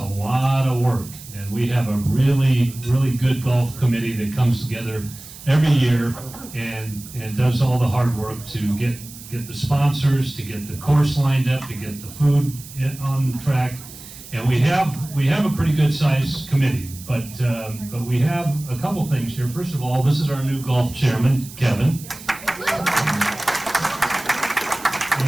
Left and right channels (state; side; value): noise; right; hiss, 16 dB below the sound